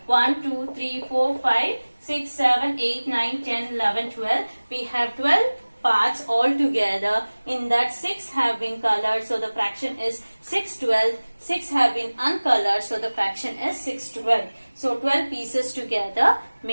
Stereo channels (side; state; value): both; inverted; correlation -1.00